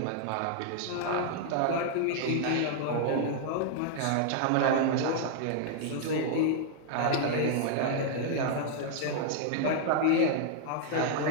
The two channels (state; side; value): different; both; correlation -0.01